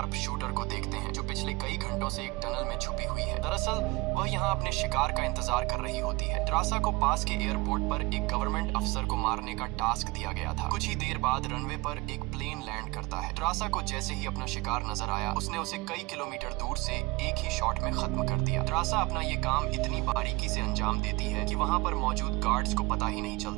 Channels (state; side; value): quieter; left; 24.1 dB